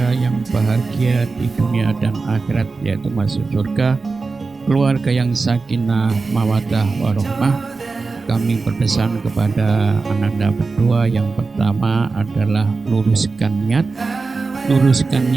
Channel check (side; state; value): left; quieter; 4.1 dB